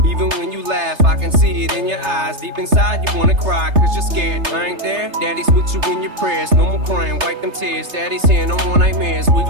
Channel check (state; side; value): late; left; 3.3 ms